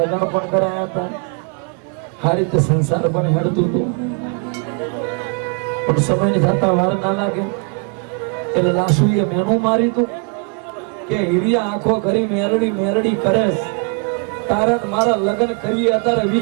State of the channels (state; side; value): quieter; left; 36.6 dB